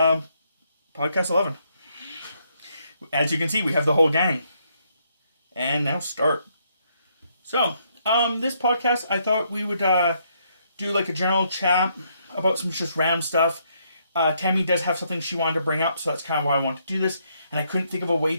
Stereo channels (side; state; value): both; inverted; correlation -0.73